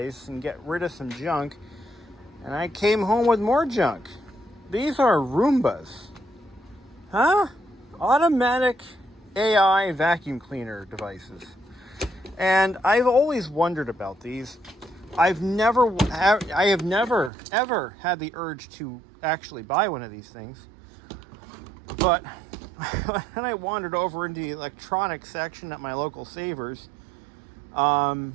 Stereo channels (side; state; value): left; drops out; at 17.3 s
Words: and get rid of some junk, and I came home with more junk. These are Roombas. Huh? Automatic AI vacuum cleaner devices. And I've always wondered about these. I have never ever had the urge to actually buy one of these things. But when I wandered over into the electronics section at my local Savers, I'm